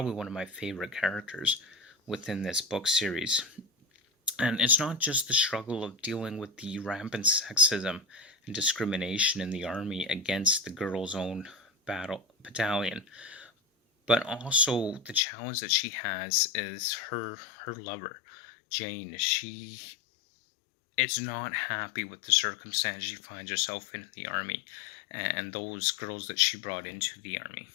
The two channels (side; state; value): right; drops out; at 15.2 s